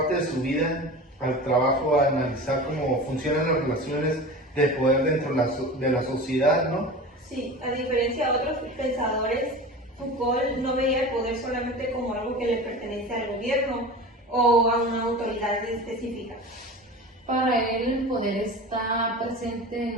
de su vida al trabajo a analizar cómo funcionan las relaciones de poder dentro de la sociedad, ¿no? Sí, a diferencia de otros pensadores, Foucault no veía el poder solamente como algo que le pertenece al gobierno o a una autoridad específica. Para él el poder está presente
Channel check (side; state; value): both; normal; correlation 0.33